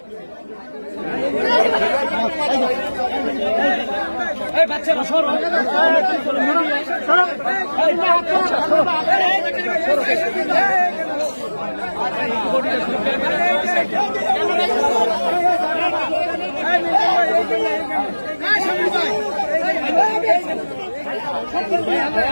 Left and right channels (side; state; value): both; inverted; correlation -1.00